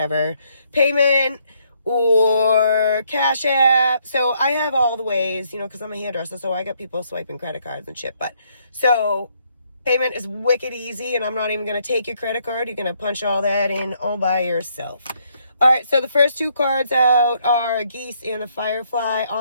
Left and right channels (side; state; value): both; inverted; correlation -0.71